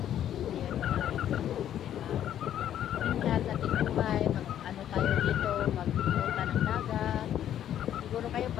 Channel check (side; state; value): right; quieter; 10.8 dB